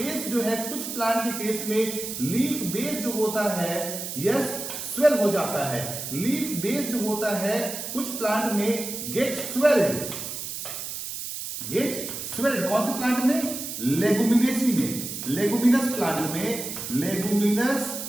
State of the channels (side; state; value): right; noise; hiss, 6 dB below the sound